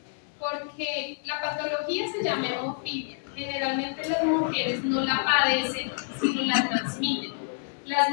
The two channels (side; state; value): right; silent; digital silence